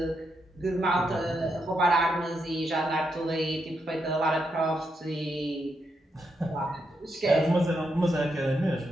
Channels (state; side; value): normal; both; correlation 0.82